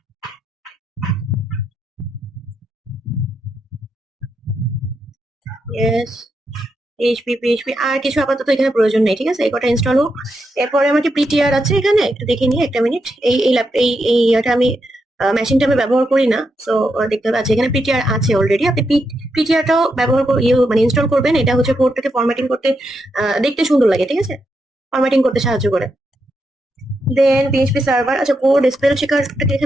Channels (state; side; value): normal; both; correlation 0.83